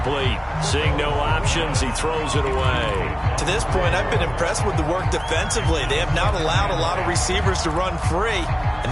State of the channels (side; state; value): both; identical; correlation 1.00